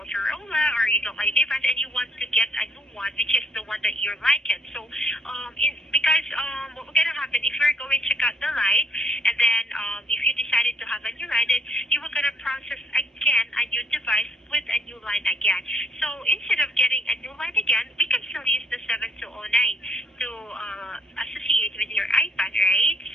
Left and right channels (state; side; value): normal; both; correlation 0.65